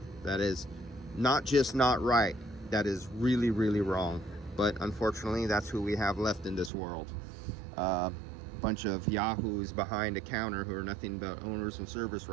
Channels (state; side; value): drops out; left; at 6.7 s